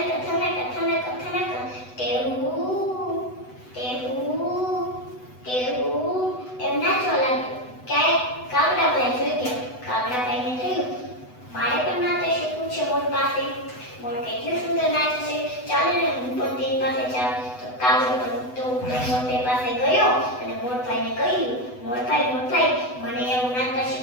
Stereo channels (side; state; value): right; late; 8.0 ms